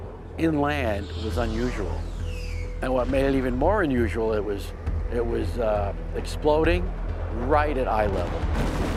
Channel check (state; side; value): identical; both; correlation 1.00